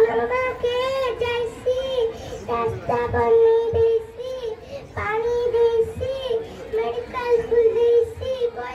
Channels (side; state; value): both; identical; correlation 1.00